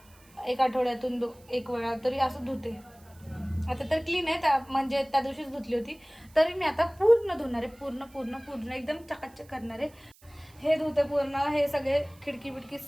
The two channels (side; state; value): right; noise; hiss, 28 dB below the sound